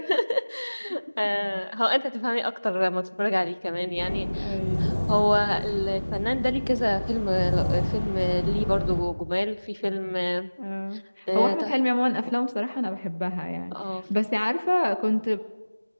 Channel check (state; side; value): inverted; both; correlation -1.00